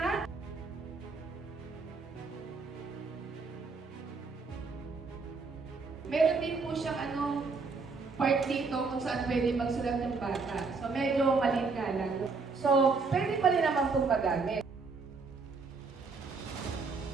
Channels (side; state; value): left; quieter; 4.4 dB